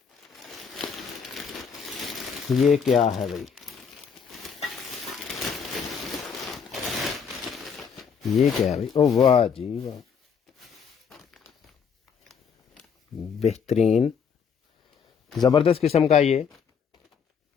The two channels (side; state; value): right; quieter; 6.6 dB